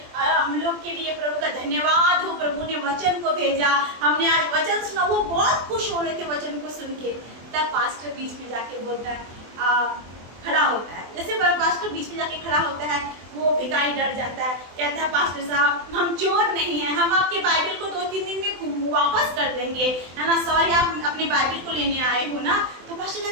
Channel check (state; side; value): late; left; 24 ms